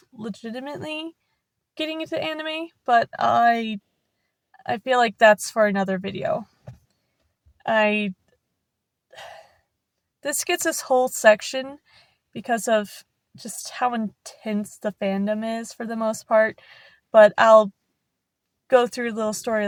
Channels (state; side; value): identical; both; correlation 1.00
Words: legitimately getting into anime, but I feel like that's for another video. This gets this whole section because of just how intense the fandom is for the most part, but I'll go through little